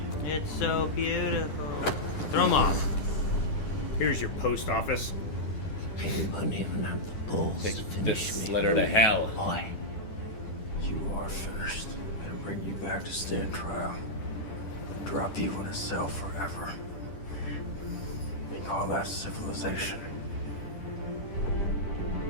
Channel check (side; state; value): right; late; 10 ms